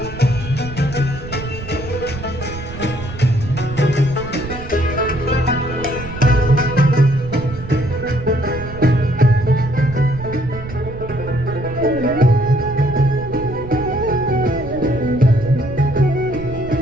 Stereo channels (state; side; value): noise; right; rumble, 11 dB below the sound